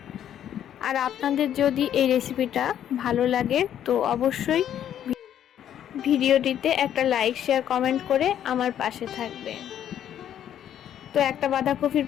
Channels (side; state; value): right; quieter; 10.3 dB